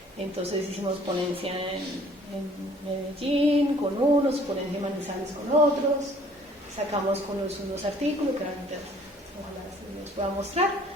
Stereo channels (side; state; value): both; normal; correlation 0.56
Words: Entonces hicimos ponencia en Medellín con unos, ponencia en Manizales con otros, sacamos con unos artículos que ahorita ojalá se los pueda mostrar,